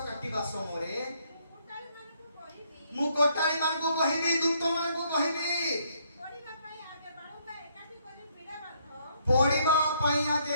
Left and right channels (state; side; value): inverted; both; correlation -0.69